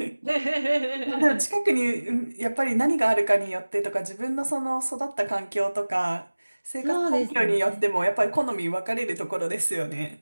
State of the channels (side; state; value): both; inverted; correlation -1.00